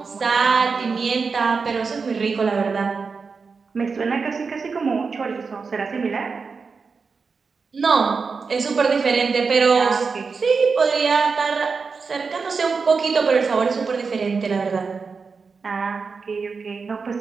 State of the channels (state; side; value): quieter; left; 4.9 dB